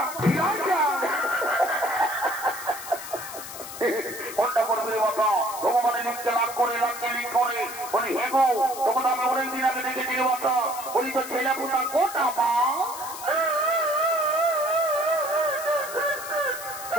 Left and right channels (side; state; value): left; noise; hiss, 11 dB below the sound